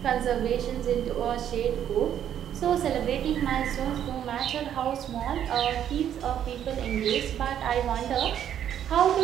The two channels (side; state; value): left; quieter; 10.0 dB